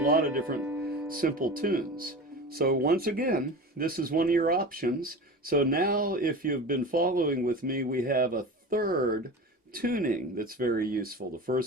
of different simple tunes. So once again, this is one of your options. So now if you've been following with me, we have a third tuning that's very useful. The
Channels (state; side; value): normal; both; correlation 0.31